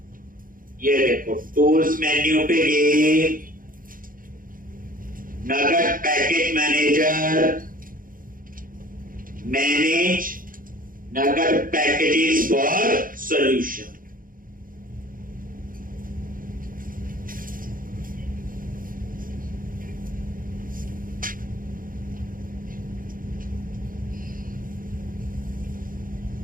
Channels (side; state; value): left; late; 0.40 ms